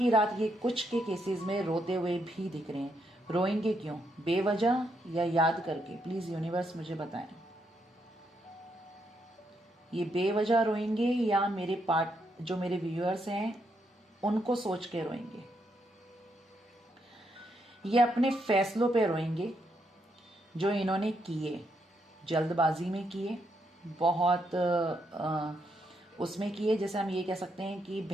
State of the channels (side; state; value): both; normal; correlation 0.78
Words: रात ये कुछ के केसेस में रोते हुए भी दिख रहे हैं। रोएंगे क्यों, बेवजह या याद करके? प्लीज यूनिवर्स मुझे बताएं, ये बेवजह रोएंगे या जो मेरे व्यूअर्स हैं उनको सोच के रोएंगे? ये अपने फैसलों पे रोएंगे जो इन्होंने किए, जल्दबाजी में किए, बहुत उसमें किए, जैसे हम ये कह सकते हैं कि